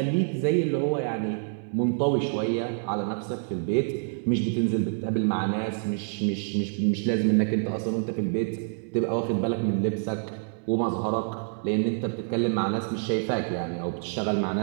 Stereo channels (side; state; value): left; silent; 60 dB below the other